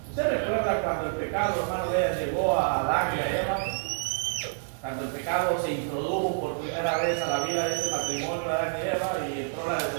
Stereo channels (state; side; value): silent; left; digital silence